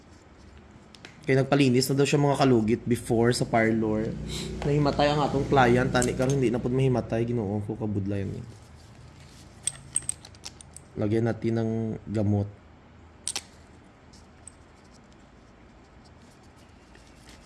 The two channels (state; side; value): identical; both; correlation 1.00